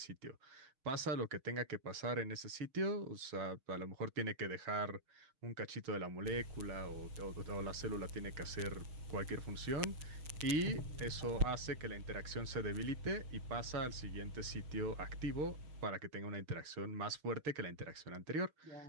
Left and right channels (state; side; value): late; left; 6.5 ms